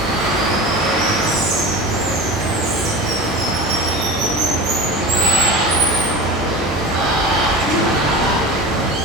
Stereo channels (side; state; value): both; normal; correlation 0.32